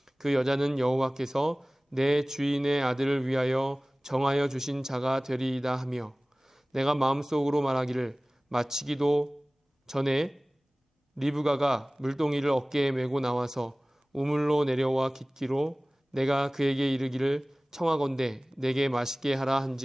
그 여자는 여호와께서 내 주인의 아들을 위하여 정하여 주신 자가 되리이다 하며 내가 마음속으로 말하기를 마치기도 전에 리브가가 물동이를 어깨에 메고 나와서 우물로 내려와 깃기로 내가 그에게 이르기를 청하건대 내게 마시게 하라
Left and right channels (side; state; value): both; normal; correlation 0.98